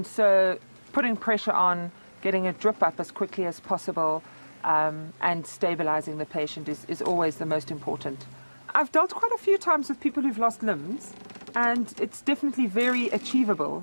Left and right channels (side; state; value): both; inverted; correlation -1.00